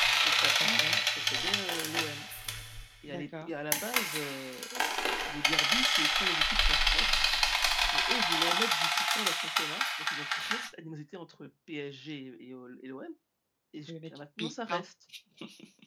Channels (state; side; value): identical; both; correlation 1.00